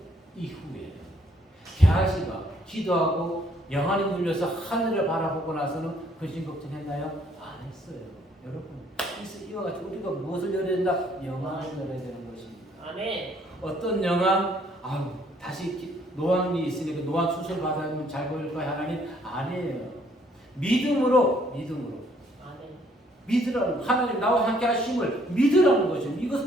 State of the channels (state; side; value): normal; both; correlation 0.65